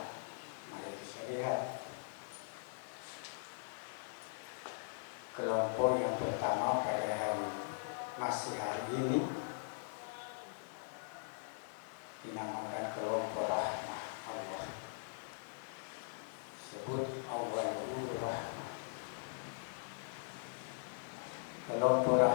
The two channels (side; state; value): right; silent; 51 dB below the other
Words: mari kita lihat kelompok yang pertama pada masih hari ini dinamakan kelompok rahmah Allah. Sebut awalul rahmah. Kelompok